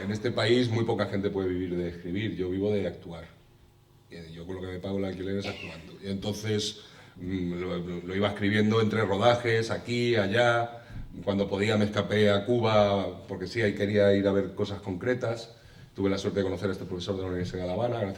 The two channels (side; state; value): both; identical; correlation 1.00